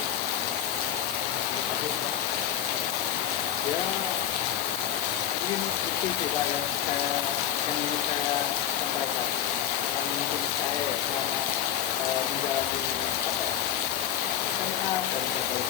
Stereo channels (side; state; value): right; quieter; 10.4 dB